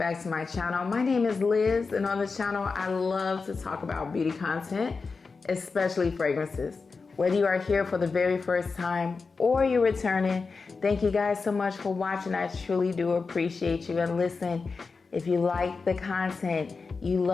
to my channel. My name is Liz, and on the channel I love to talk about beauty content, especially fragrances. Whether you are here for the very first time or you're returning, thank you guys so much for watching. I truly do appreciate you. And listen, if you like the content, you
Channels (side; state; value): right; quieter; 4.5 dB